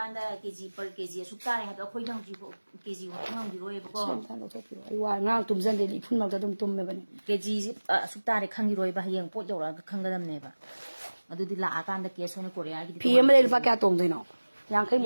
da kg per kg su ta ne ha da khoi nang ji ko kg wa ngang di roi ba ko sen tan lo to pi ai wa ngang tum jan de li phun ma da tum me ba ni kg su ta ne khang gi roi ba yeng pot yo ra khang ga dam ne ba adu di la akan da ke so ne korea gi pi em le lupa kya tong de no yang khai mu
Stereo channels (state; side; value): inverted; both; correlation -1.00